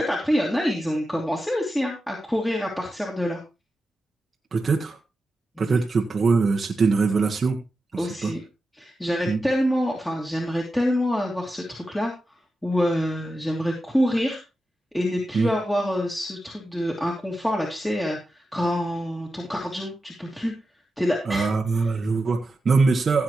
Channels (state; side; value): normal; both; correlation 0.91